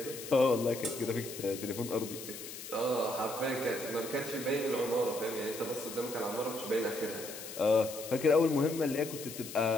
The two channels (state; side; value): noise; left; hiss, 11 dB below the sound